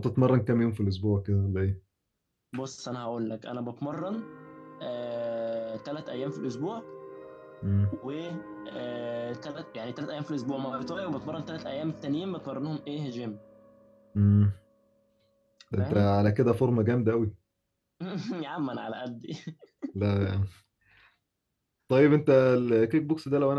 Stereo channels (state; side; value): identical; both; correlation 1.00